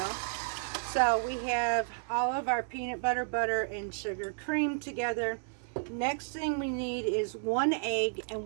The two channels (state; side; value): silent; left; digital silence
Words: So we have all of our peanut butter, and sugar creamed together. Next thing we need is 1 egg